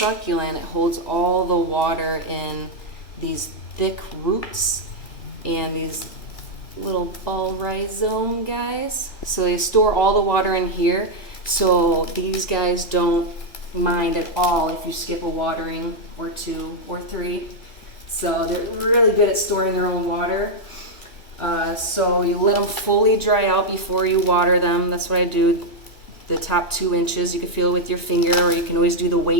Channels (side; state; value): right; late; 1.9 ms